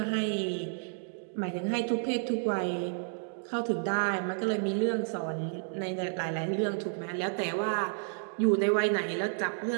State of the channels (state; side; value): silent; left; digital silence